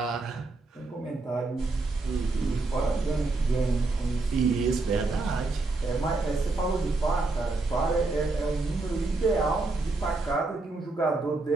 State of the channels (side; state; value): left; quieter; 3.4 dB